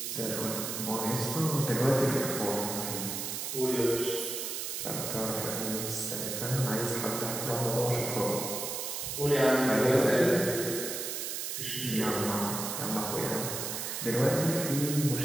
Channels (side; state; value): right; noise; hiss, 4 dB below the sound